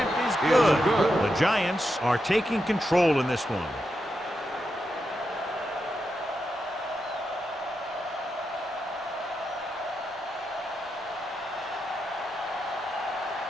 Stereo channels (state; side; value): normal; both; correlation 0.86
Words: is good. The Giants are taking control in this one.